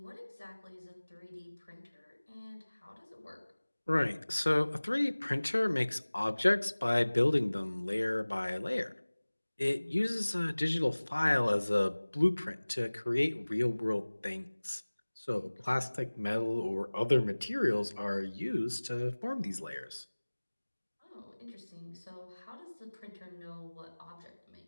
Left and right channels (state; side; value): inverted; both; correlation -1.00